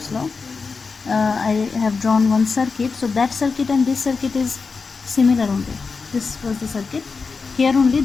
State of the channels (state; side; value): quieter; right; 4.7 dB